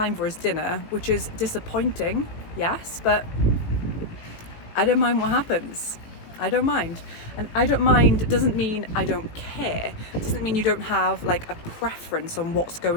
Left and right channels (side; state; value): right; late; 18 ms